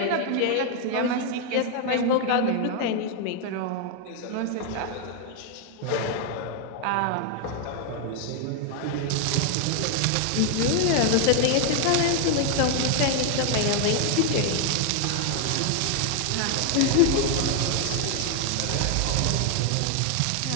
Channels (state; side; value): different; both; correlation 0.00